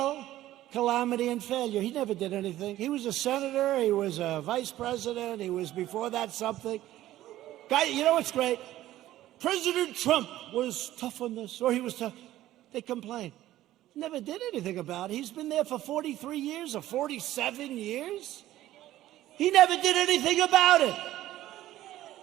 calamity, and failure. He never did anything. He was a senator. He was a vice president. He was, before that, something. Guy, you know what's great? President Trump was tough on this, or he was tough. They complained. Never did anything about it. He's been there for 43 years or 47 years. He never did anything about it.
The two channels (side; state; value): left; quieter; 14.4 dB